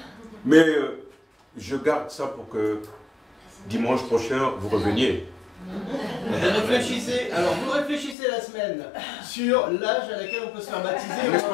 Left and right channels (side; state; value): right; drops out; at 8.2 s